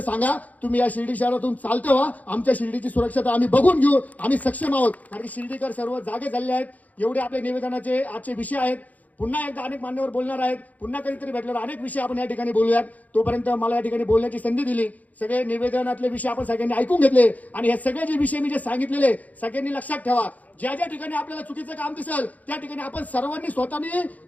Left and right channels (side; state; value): right; late; 0.076 ms